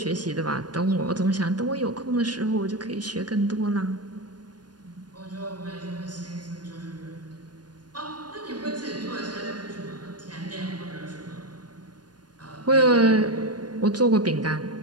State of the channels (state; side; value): late; left; 0.69 ms